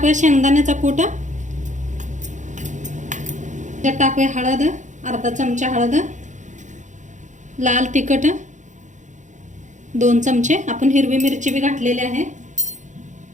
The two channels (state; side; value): late; left; 0.35 ms